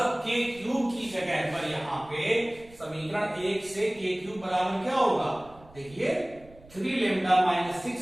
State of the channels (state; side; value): noise; right; rumble, 23 dB below the sound